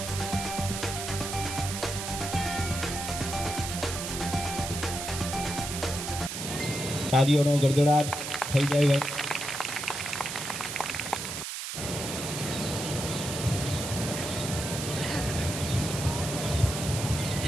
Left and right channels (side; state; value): right; noise; hiss, 5 dB below the sound